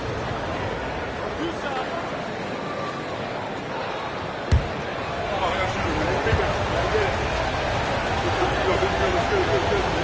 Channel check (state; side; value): identical; both; correlation 1.00